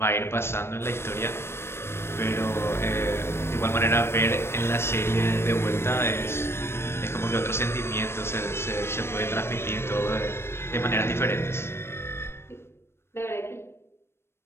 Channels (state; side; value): late; right; 0.12 ms